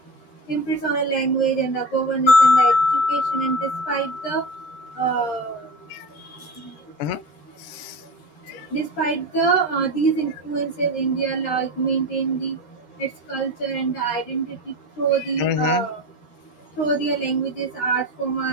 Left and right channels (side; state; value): right; late; 14 ms